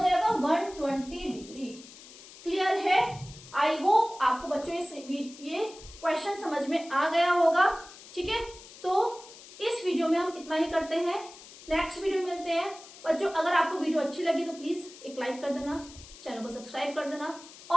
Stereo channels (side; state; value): left; noise; hiss, 18 dB below the sound